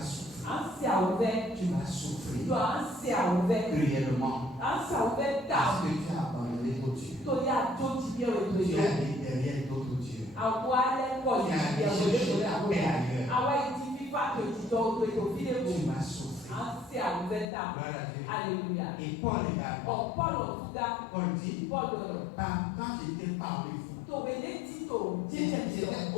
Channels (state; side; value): drops out; right; at 17.4 s